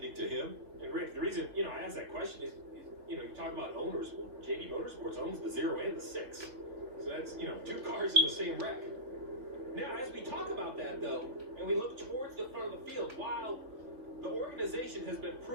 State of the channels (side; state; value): left; late; 3.7 ms